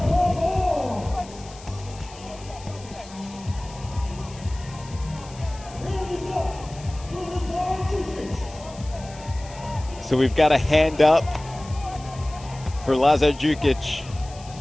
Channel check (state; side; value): noise; left; hiss, 20 dB below the sound